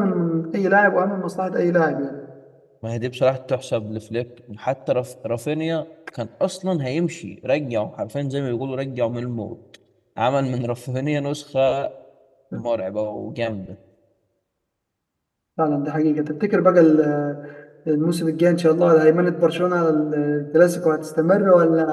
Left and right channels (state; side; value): identical; both; correlation 1.00